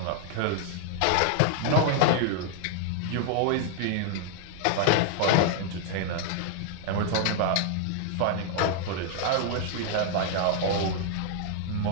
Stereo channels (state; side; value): different; both; correlation 0.00